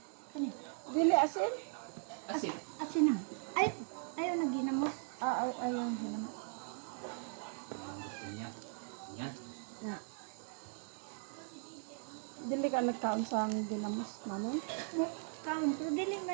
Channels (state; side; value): silent; left; 52 dB below the other